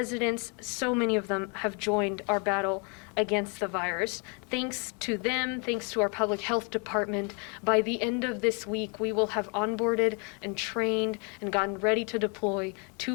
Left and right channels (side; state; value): right; quieter; 34.8 dB